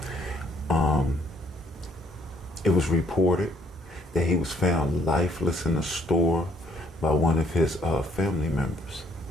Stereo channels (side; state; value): both; normal; correlation 0.65